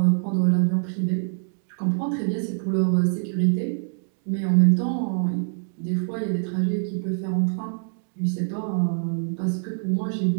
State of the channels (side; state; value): left; silent; digital silence